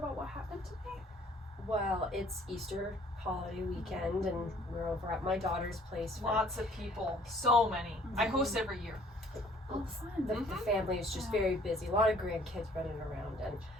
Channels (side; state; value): both; normal; correlation 0.58